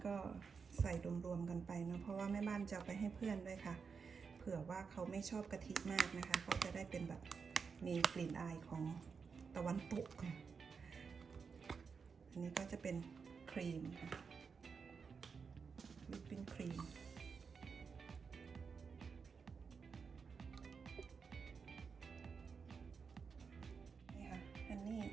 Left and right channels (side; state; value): left; quieter; 5.6 dB